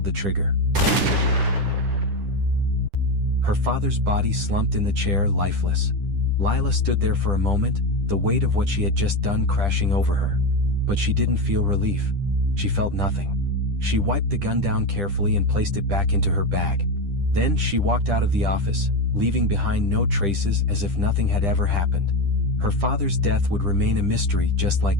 the trigger. Her father's body slumped in the chair, lifeless. Lila stood there for a moment, the weight of what she had just done crashing over her. But she didn't feel relief. She felt nothing. She wiped the gun down carefully and placed it back into her bag. Then she walked out of the office, leaving behind no traces, as if nothing had ever happened. Her father's death would remain a mystery, just like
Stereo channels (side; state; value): left; late; 10 ms